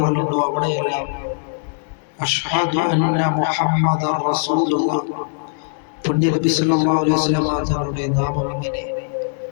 അവിടെയെല്ലാം അഷ്ഹദു അന്ന മുഹമ്മദൻ റസൂലുള്ളാഹ് പുണ്യ നബി സല്ലല്ലാഹു അലൈഹി വസല്ലം തങ്ങളുടെ നാമം ഇങ്ങനെ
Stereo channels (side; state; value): right; silent; digital silence